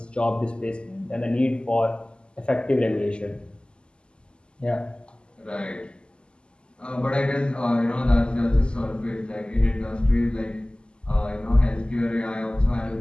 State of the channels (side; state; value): right; late; 0.049 ms